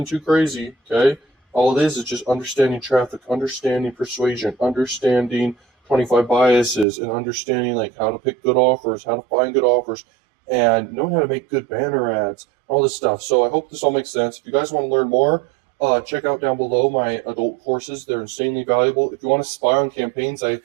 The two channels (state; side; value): drops out; left; at 6.9 s